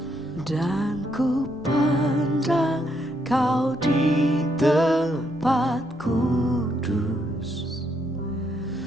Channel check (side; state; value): both; normal; correlation 0.75